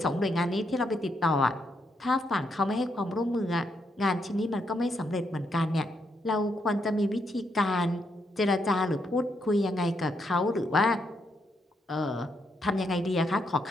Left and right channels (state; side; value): normal; both; correlation 0.78